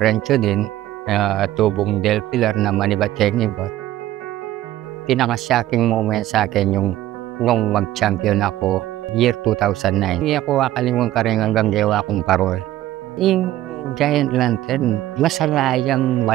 din, tubong Del Pilar na Manibat-Chenibot. Pinaka-shocking moment sa akin yung nung mag-champion ako, year 2009. Hindi ako kakalimutan ka rin hanggang gawa kong parol. Yung Giant Lantern, masalayang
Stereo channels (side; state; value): left; quieter; 14.4 dB